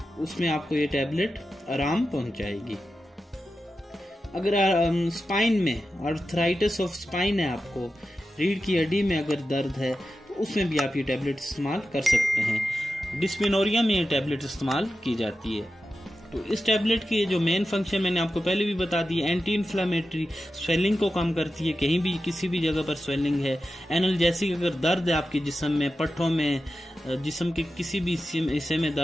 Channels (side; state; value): both; normal; correlation 0.92